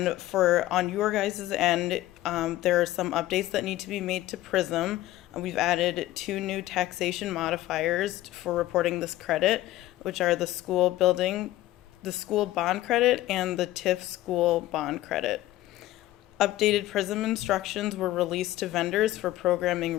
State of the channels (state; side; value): quieter; right; 15.7 dB